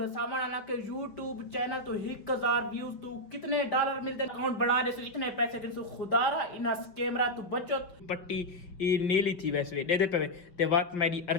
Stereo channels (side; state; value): right; late; 5.5 ms